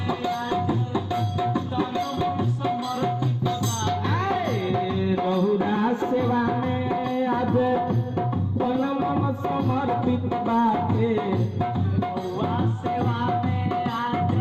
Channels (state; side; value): identical; both; correlation 1.00